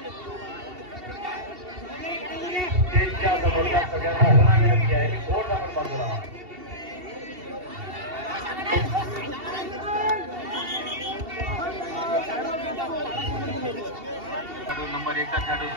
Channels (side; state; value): left; late; 2.7 ms